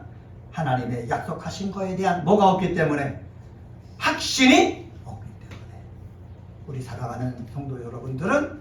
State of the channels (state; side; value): identical; both; correlation 1.00